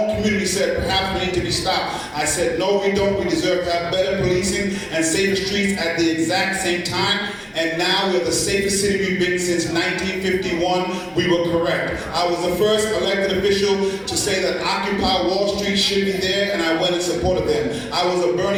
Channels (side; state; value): both; identical; correlation 1.00